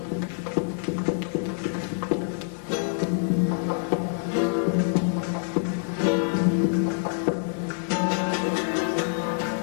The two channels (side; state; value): right; silent; digital silence